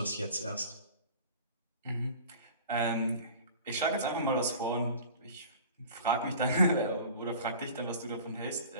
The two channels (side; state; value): both; inverted; correlation -0.41